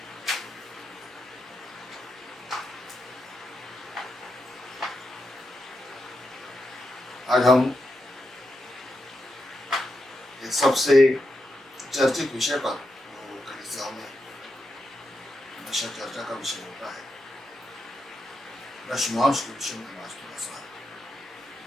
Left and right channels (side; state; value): both; normal; correlation 0.86